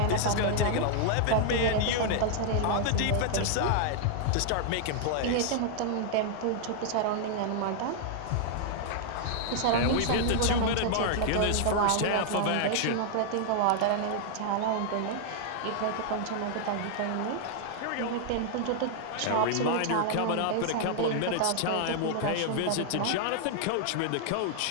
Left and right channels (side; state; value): both; different; correlation 0.00